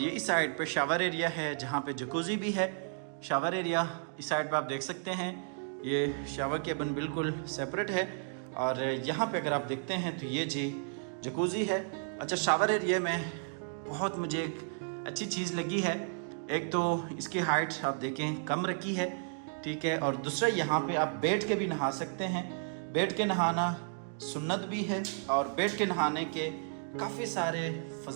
ये इस साइड पे शावर एरिया है जहाँ पे जकूज़ी भी है। शावर एरिया इस साइड पे आप देख सकते हैं। ये शावर केबिन बिल्कुल सेपरेट है, और यहाँ पे अगर आप देखते हैं तो ये जी जकूज़ी है। अच्छा, शावर एरिया में बहुत मुझे एक अच्छी चीज़ लगी है। एक तो इसकी हाइट आप देखें कम रखी है, ठीक है, और दूसरा यहाँ पे आप बैठ के भी नहा सकते हैं। बैठ के नहाना सुन्नत भी है और बैठ के नहाने के काफ़ी सारे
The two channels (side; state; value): left; silent; digital silence